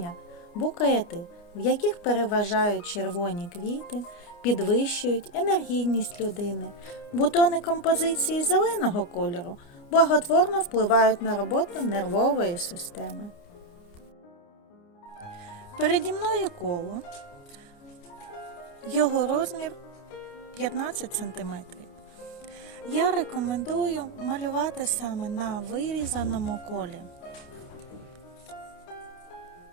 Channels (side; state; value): right; late; 29 ms